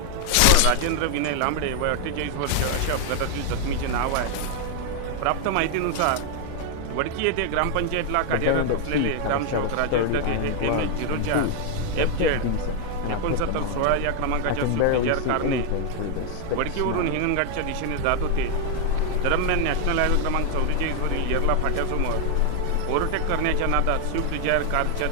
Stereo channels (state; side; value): different; both; correlation 0.00